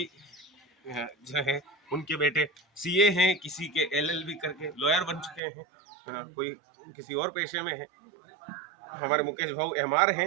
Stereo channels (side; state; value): left; drops out; at 5.4 s